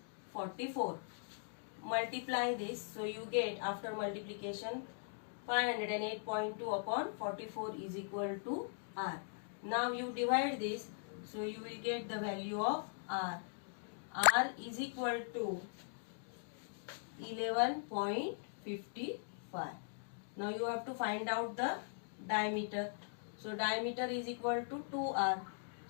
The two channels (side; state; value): right; silent; digital silence